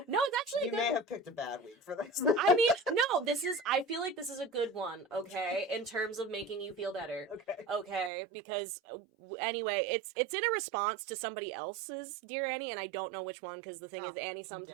No, it's actually You good. may have picked a bad week for this. I mean, no, I feel like this is a good one, okay, in terms of making you feel better. Okay, because anyway, it's in a response to somebody else's Dear Annie, and I don't know which one, because the thing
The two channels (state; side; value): drops out; left; at 8.1 s